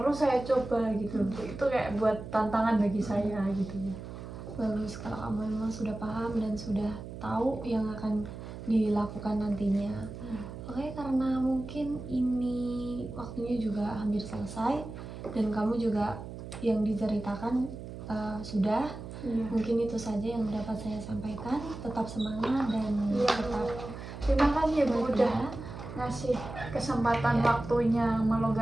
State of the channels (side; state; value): right; noise; hum, 11 dB below the sound